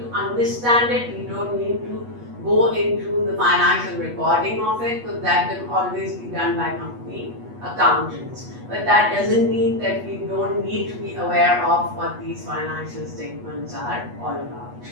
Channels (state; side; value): late; left; 8.3 ms